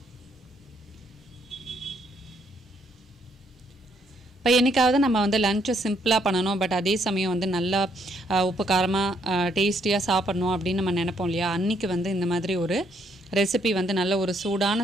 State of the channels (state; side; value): normal; both; correlation 0.71